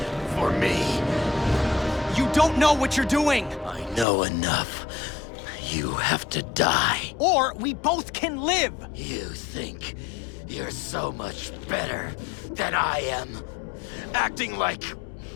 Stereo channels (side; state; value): right; drops out; at 4.0 s